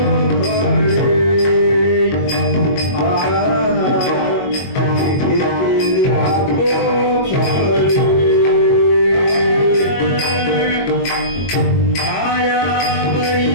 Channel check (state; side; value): late; right; 22 ms